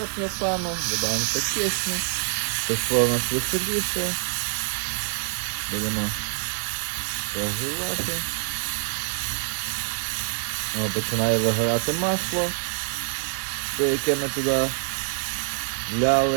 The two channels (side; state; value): left; silent; digital silence